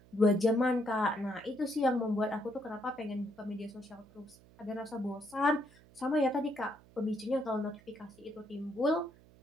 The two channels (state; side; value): noise; right; hum, 25 dB below the sound